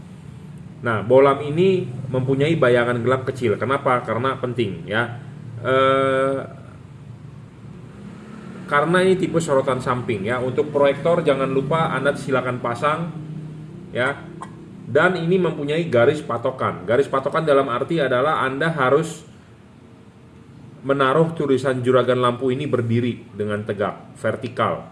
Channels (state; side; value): identical; both; correlation 1.00